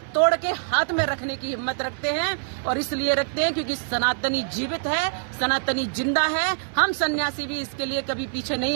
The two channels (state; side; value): silent; left; 62 dB below the other